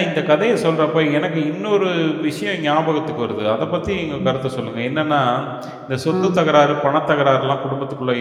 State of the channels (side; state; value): both; identical; correlation 1.00